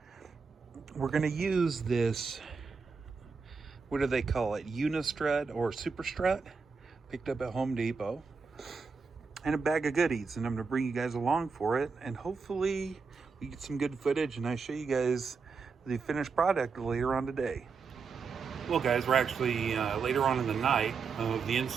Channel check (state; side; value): quieter; left; 5.1 dB